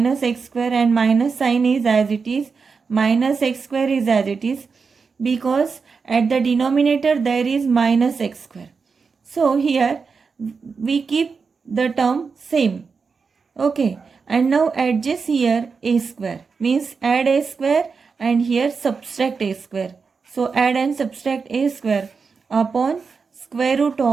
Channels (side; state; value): left; quieter; 5.1 dB